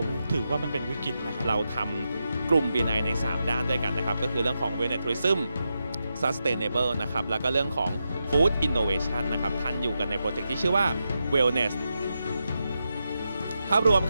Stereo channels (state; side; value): inverted; both; correlation -0.87